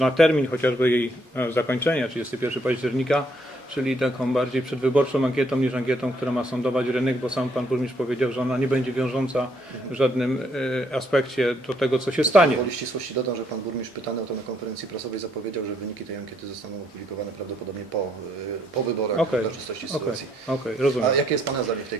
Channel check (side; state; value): both; normal; correlation 0.71